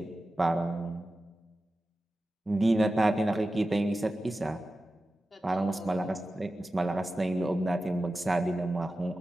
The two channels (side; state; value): both; normal; correlation 0.93